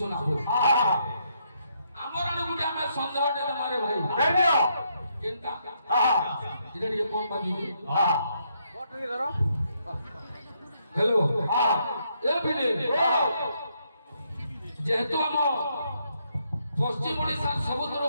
হ্যাঁ আমার আনে গুটি আমি সন্দেহটা মারে ভাই নেনিও কেনটা হ্যাঁ এটা দিয়ে কোন বাজি হ্যাঁ हेलो হ্যাঁ ए बिने जेहेतु हम पश्चिम ओडिशा सबुतरो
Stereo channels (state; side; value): inverted; both; correlation -0.75